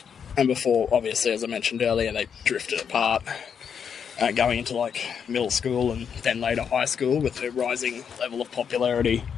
before, obviously, as I mentioned earlier, they drifted apart, going into, like, middle school and then later high school with their rising level of popularity.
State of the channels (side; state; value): right; quieter; 7.3 dB